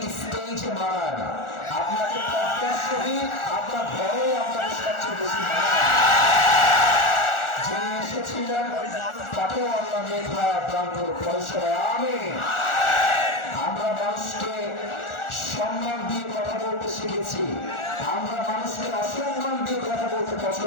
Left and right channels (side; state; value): right; late; 1.4 ms